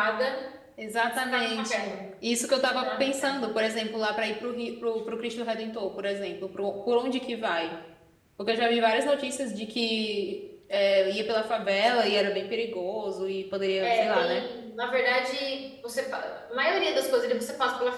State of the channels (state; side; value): identical; both; correlation 1.00